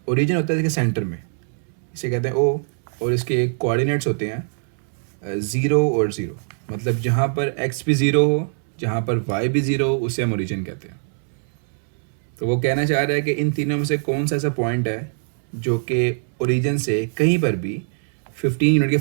ओरिजिन होता है इसके सेंटर में, इसे कहते हैं ओ, और इसके कोऑर्डिनेट्स होते हैं 0 और 0। मतलब जहाँ पर x भी 0 हो, जहाँ पर y भी 0 हो, उसे हम ओरिजिन कहते हैं। तो वो कहना चाह रहा है कि इन तीनों में से कौन सा ऐसा पॉइंट है जो कि ओरिजिन से कहीं पर भी 15 यूनिट के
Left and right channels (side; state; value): left; silent; 64 dB below the other